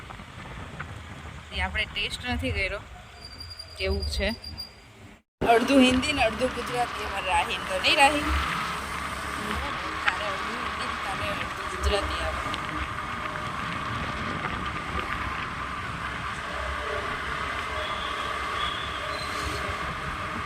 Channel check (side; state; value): both; identical; correlation 1.00